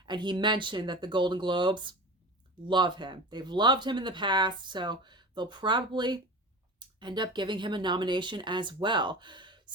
And he mentioned that the Golden Globes love him. They've loved him in the past, so they'll probably end up giving him a nomination as well.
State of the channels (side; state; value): both; normal; correlation 0.32